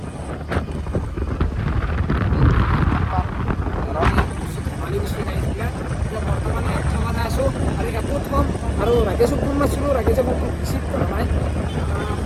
আৰু ৰাকেশক ফোন মাৰিছিলোঁ ৰাকেশে মোক ৰিচিভ কৰা নাই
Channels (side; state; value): both; identical; correlation 1.00